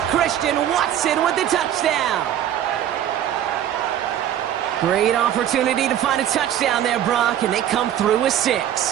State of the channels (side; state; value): left; quieter; 10.8 dB